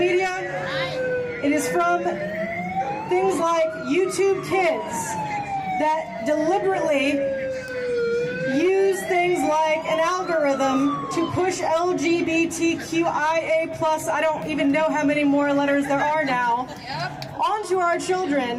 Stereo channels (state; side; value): identical; both; correlation 1.00